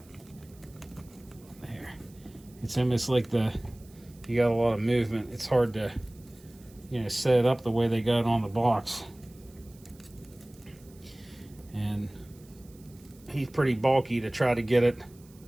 There, it's almost like you got a lot of movement. It's hard to, set it up the way they got it on the box. And he's pretty bulky to try to get it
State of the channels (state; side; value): noise; right; hiss, 27 dB below the sound